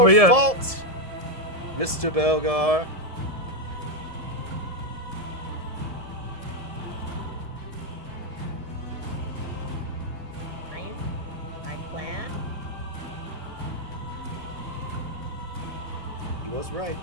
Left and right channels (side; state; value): left; late; 1.7 ms